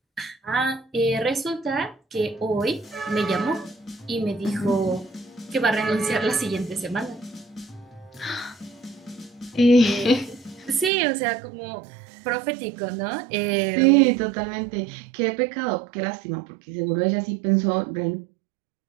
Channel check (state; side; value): drops out; left; at 10.9 s